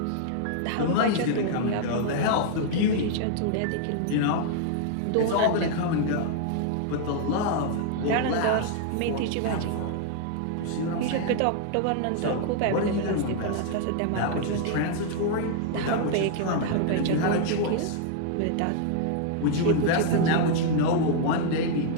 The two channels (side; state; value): both; different; correlation 0.00